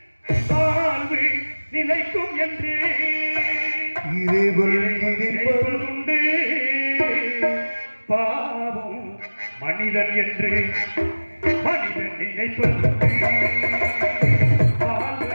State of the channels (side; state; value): both; inverted; correlation -1.00